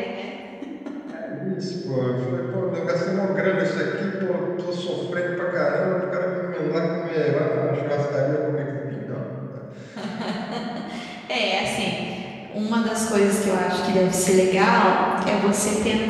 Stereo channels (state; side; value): identical; both; correlation 1.00